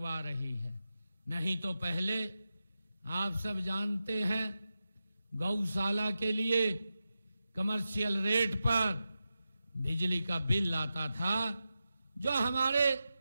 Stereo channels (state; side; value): inverted; both; correlation -0.91